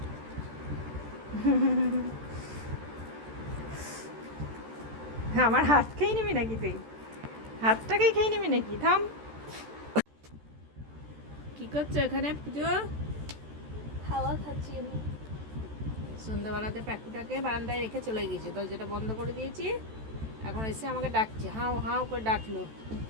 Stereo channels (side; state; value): left; late; 14 ms